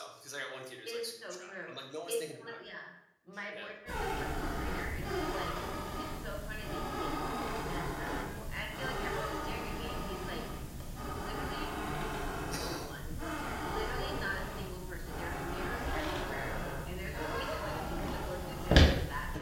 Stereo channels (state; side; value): identical; both; correlation 1.00